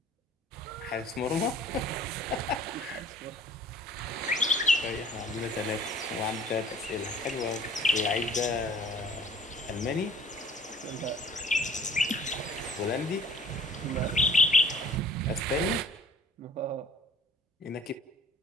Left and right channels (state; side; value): normal; both; correlation 0.52